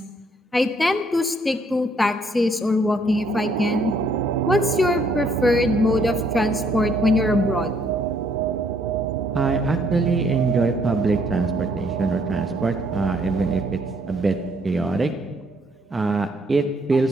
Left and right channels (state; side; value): normal; both; correlation 0.67